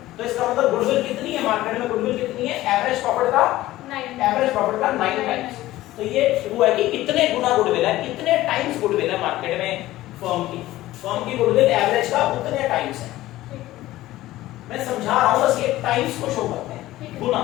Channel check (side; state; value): right; quieter; 16.1 dB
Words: तो इसका मतलब गुडविल कितनी है मार्केट में? गुडविल कितनी है? एवरेज प्रॉफिट का 9 टाइम्स। तो ये हुआ कि कितने गुना गुडविल है, कितने टाइम्स गुडविल है मार्केट में फर्म की गुडविल एवरेज का उतने टाइम्स है। मैं समझा रहा हूं, बस ये टाइम्स को शो करते हैं, गुना,